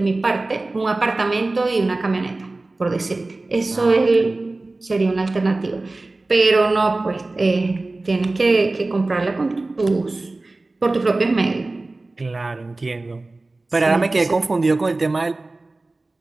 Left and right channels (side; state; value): left; quieter; 3.1 dB